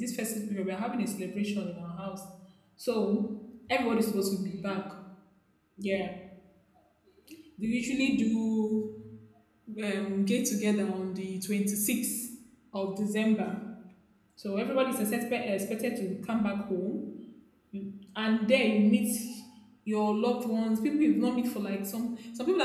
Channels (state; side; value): identical; both; correlation 1.00